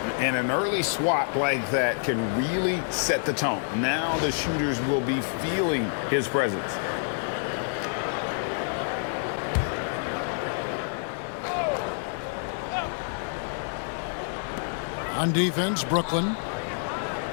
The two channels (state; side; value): silent; right; 58 dB below the other